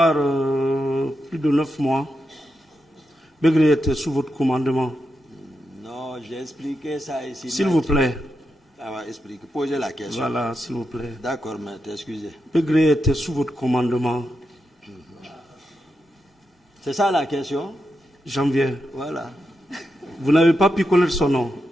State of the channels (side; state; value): both; normal; correlation 0.86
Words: plus de 9 mois. Begré était sous votre commandement. Non, j'ai expliqué ça ici. S'il vous plaît. Ça va expliquer. Posez la question. Voilà, s'il vous plaît. D'accord, maître, excusez. Begré était sous votre commandement. C'est ça la question? Janvier. Voilà. Vous n'avez pas pu connaître son nom